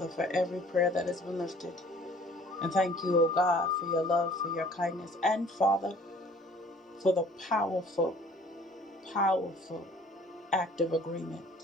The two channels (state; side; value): normal; both; correlation 0.53